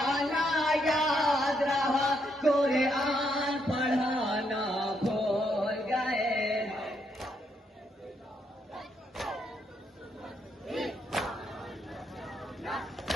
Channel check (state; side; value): normal; both; correlation 0.76